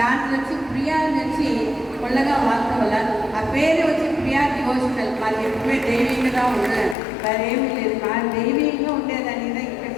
దాంట్లో వచ్చి ప్రియా వచ్చి కొల్లగా వాళ్ళ వల్ల ఆ పేరు వచ్చి ప్రియా డివోషనల్. మాకు ఎప్పుడే దైవీయంగా ఉండదు, మరేమీ లేదు. మా దైవీయంగా ఉండేదని ఇక్కడ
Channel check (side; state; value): right; drops out; at 7.0 s